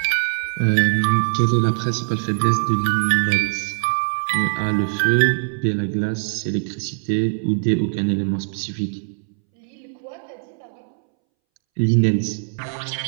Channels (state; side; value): silent; left; 64 dB below the other